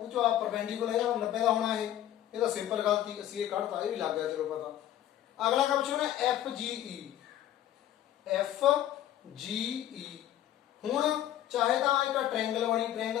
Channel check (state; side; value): quieter; right; 12.3 dB